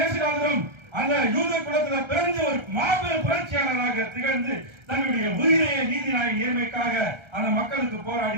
அந்த யூத குலத்தில் பிறந்து ஒரு மாபெரும் புரட்சியாளராக திகழ்ந்து தன்னுடைய உயிரையை நீதிநாயக நேர்மைக்காக அந்த மக்களுக்கு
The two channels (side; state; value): left; late; 1.3 ms